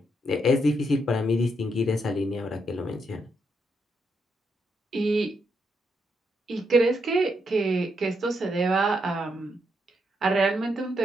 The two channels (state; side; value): normal; both; correlation 0.79